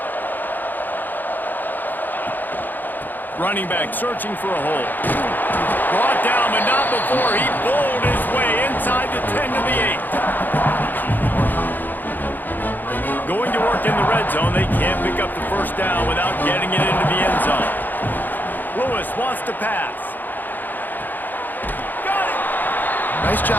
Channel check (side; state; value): right; late; 0.088 ms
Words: Running back searching for a hole. Brought down, but not before he bowled his way inside the 10 to the 8. Going to work in the red zone, they can't pick up the first down without getting it into the end zone. Lewis wants to pass. Got it! Nice